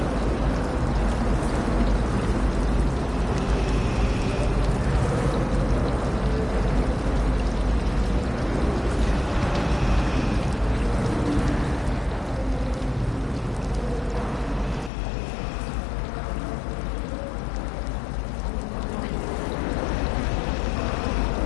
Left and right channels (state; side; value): drops out; right; at 14.9 s